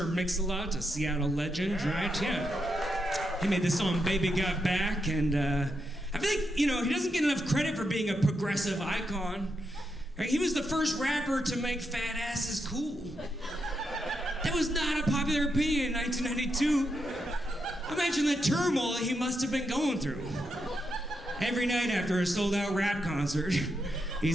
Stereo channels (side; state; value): both; normal; correlation 0.83